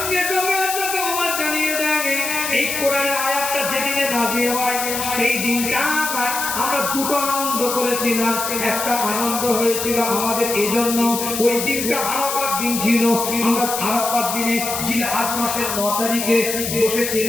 সঙ্গে হযরত ওমর জানিয়ে দেয় এই কোরআনের আয়াতটা যেদিনে নাযিল হয় সেই দিনটা আমরা দুটো আনন্দ করেছিলাম। একটা আনন্দ হয়েছিল আমাদের এজন্য, ওই দিনটা আরাফাত দিন ছিল। আমরা আরাফাত দিনে জিলহজ মাসের 9 তারিখে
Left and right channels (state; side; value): noise; left; hiss, 3 dB below the sound